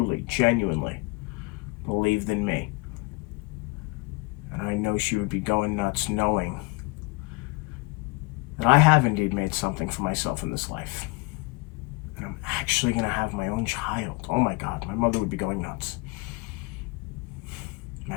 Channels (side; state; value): right; quieter; 26.6 dB